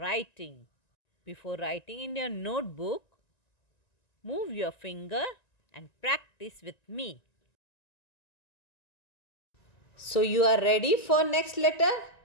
Before writing in your notebook, move your finger and practice with me. So you are ready for next letter?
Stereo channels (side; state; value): right; late; 1.9 ms